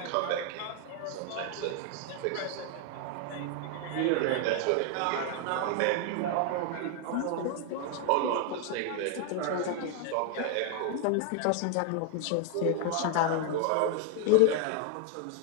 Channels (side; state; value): both; different; correlation 0.01